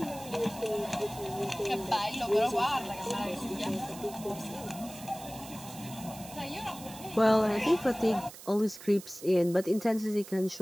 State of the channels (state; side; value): noise; right; hiss, 16 dB below the sound